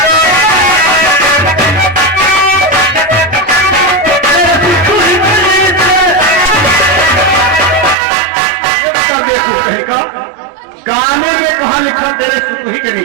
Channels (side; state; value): left; drops out; at 8.0 s